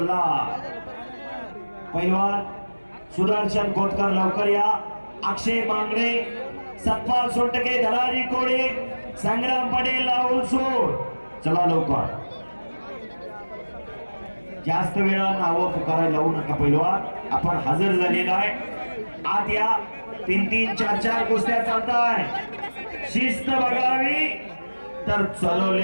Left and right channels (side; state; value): both; inverted; correlation -1.00